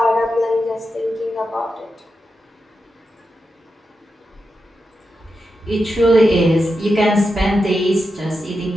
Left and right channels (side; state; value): both; normal; correlation 0.88